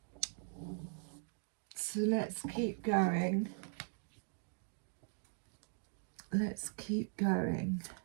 So let's keep going. Let's keep going.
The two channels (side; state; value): left; silent; digital silence